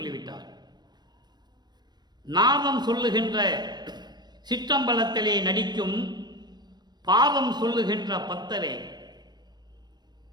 நாதம் சொல்லுகின்ற சிற்றம்பலத்திலே நடிக்கும் பாவம் சொல்லுகின்ற பத்தரே.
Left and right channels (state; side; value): late; left; 0.20 ms